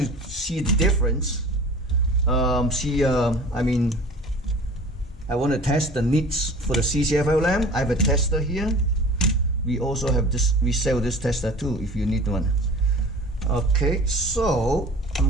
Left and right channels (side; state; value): both; normal; correlation 0.42